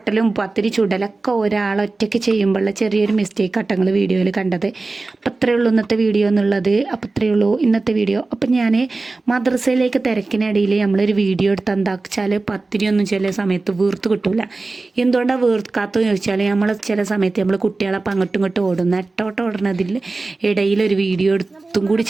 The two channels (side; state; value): left; quieter; 3.5 dB